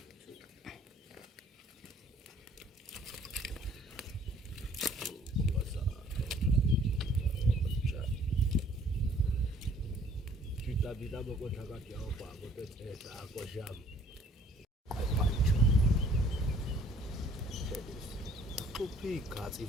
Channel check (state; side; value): normal; both; correlation 0.57